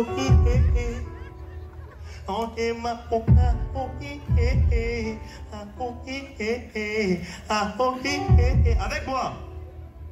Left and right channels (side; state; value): both; identical; correlation 1.00